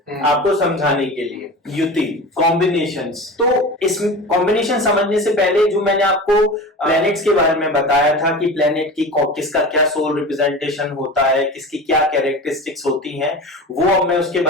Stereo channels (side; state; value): both; normal; correlation 0.32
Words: आपको समझाने के लिए। युति, कॉम्बिनेशंस। तो इस कॉम्बिनेशन समझने से पहले जो मैंने आपको प्लैनेट्स के बारे में बताया था कि प्लैनेट की किसका क्या सोल रिप्रेजेंटेशन होता है, किसकी क्या कैरेक्टरिस्टिक्स होती हैं, वो अब मैं उसके